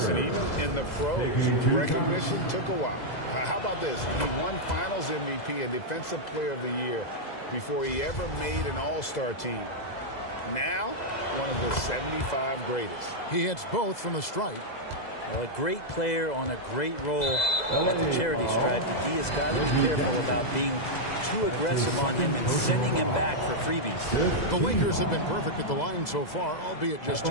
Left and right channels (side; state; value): right; late; 2.0 ms